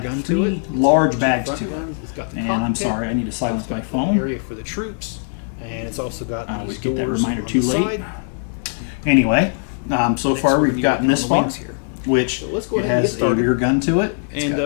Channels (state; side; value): silent; right; 58 dB below the other